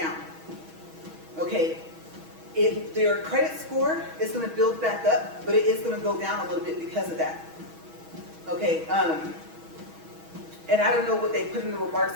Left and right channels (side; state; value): left; late; 6.2 ms